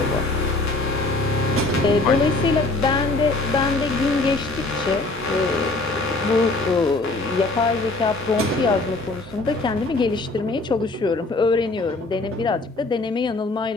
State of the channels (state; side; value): quieter; right; 3.1 dB